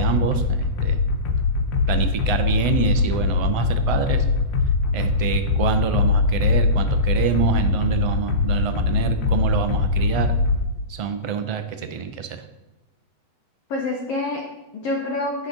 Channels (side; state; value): right; late; 8.0 ms